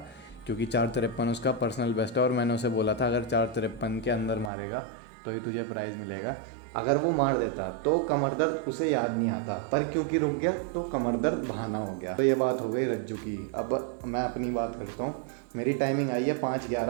क्योंकि 4:53 उसका पर्सनल बेस्ट है और मैंने उसे बोला था अगर 4:53 के अंदर मारेगा तो ही तुझे प्राइज़ मिलेगा। अगर वो मार देता तो कमर दर्द उसे याद नहीं आता, पर क्योंकि रुक गया तो कमर दर्द बहाना हो गया। तो ये बात हो गई रज्जू की। अब मैं अपनी बात करता हूँ। मेरी टाइमिंग आई है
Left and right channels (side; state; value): left; drops out; at 4.5 s